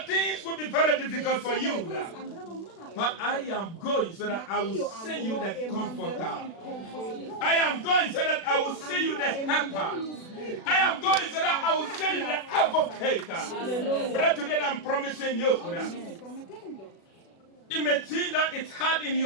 things will be very difficult for you. But I am going so that I will send you the comforter. I am going so that I will send you the helper. I am going so that I will send you the advocate. But today I'm promising you. It may seem that it's hard in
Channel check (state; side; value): late; right; 36 ms